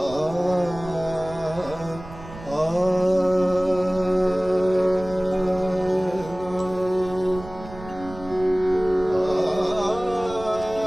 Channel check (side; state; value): right; noise; rumble, 15 dB below the sound